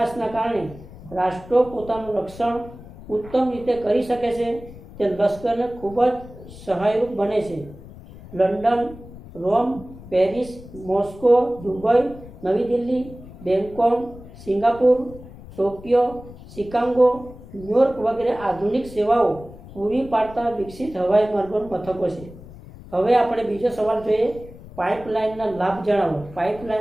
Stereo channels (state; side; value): noise; left; rumble, 17 dB below the sound